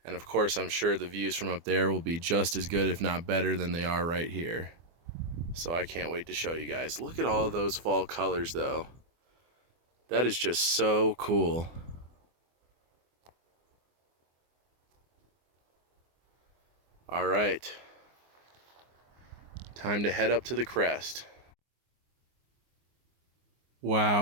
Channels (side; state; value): left; late; 24 ms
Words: And of course, I'm sure the views from up there will be just as good, if not better, than they are right here. So I can't wait to show you guys. Look at all of those fall colors though. That is just so cool. All right, time to head up to the crest.